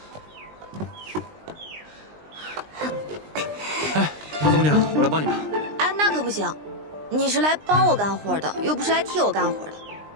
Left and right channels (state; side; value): late; left; 20 ms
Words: 哎，陶总娘，我来帮你吧。哎，那可不行，你是来帮我干活的，又不是来替我干活的。